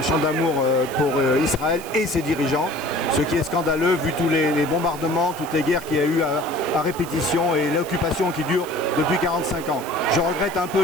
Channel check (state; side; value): noise; right; hiss, 16 dB below the sound